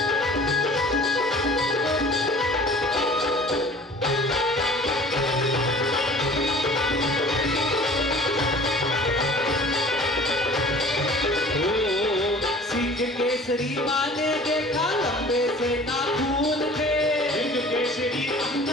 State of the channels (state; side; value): normal; both; correlation 0.46